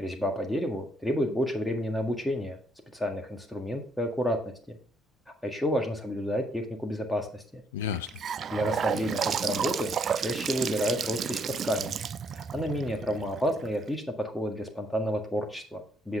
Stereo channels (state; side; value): normal; both; correlation 0.70